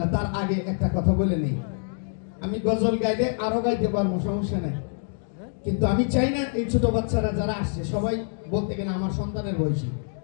না, তার আগে একটা কথা বলে নেই। আমি গজল গাইলে আরো গাইতে পারবো, সমস্যা নাই, কিন্তু আমি চাই না এই ছোট বাচ্চারা যারা আসছে সবাই বলতে গেলে আমার সন্তানের বয়সী।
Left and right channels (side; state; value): right; silent; 61 dB below the other